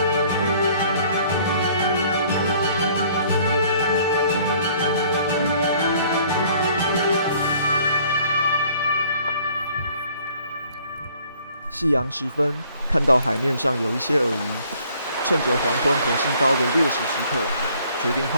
夕阳时分，看到海面上有一些鳄鱼，趁着黄昏火星高的劣势时刻，决定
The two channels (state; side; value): inverted; both; correlation -0.58